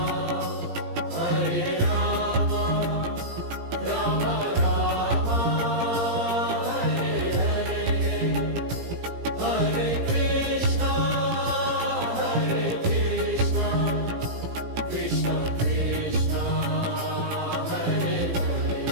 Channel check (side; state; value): left; late; 17 ms